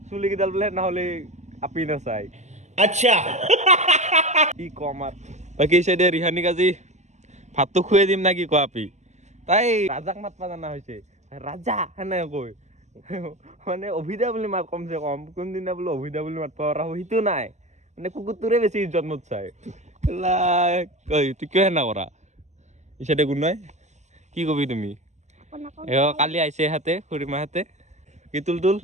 চুলি কেইডাল বোলে নহ'লে আপি নাচাই আচ্ছা কি কম আৰু বাকী চাইডে ৰিহানিক আজি ভাতটো খুৱাই দিম না কি কোৱা আপি তাই ৰাজাক মাতবা জানা হৈছে ৰাজা সেনে কৈ মানে অভিদা বুলি মাত কমচে কম কোনদিনা বোলে অভিদা বুলি মাতবা পৰা সেইটো নাই মানে কুকুৰটোৰে বেছি ইজ্জত মত চাই তুই কিয় সেনা কৰা ইচাইডে কোন নাই কি কবি তুমি কালি আহিছে হাতে খুৰীমাহঁতে কি তুল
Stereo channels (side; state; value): left; late; 0.34 ms